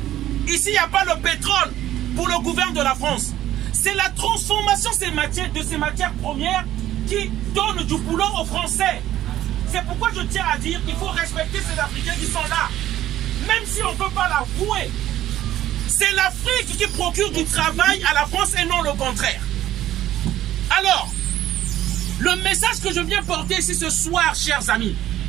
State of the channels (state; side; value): quieter; left; 13.3 dB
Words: Ici, il n'y a pas le pétrole pour le gouvernement de la France. C'est la transformation de ces matières premières qui donne du boulot aux Français. C'est pourquoi je tiens à dire qu'il faut respecter ces Africains qui sont là. Même si on ne peut pas l'avouer. C'est l'Afrique qui procure du travail à la France et non le contraire. Alors, le message que je viens porter ici ce soir, chers amis,